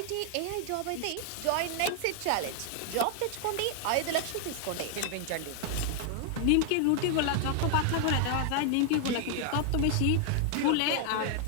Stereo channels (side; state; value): both; different; correlation 0.00